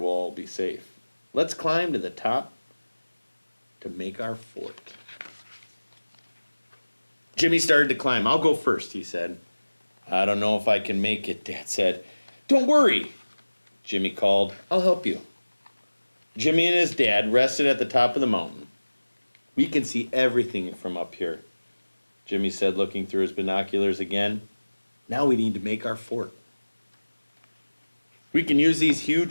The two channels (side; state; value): both; inverted; correlation -1.00